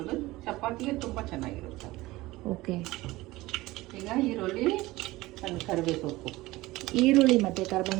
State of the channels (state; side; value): quieter; left; 19.2 dB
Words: ಚಪಾತಿಗೆ ತುಂಬಾ ಚೆನ್ನಾಗಿರುತ್ತೆ. ಓಕೆ. ಈಗ ಈರುಳ್ಳಿ, ಕರಿಬೇವು ಸೊಪ್ಪು. ಈರುಳ್ಳಿ ಮತ್ತೆ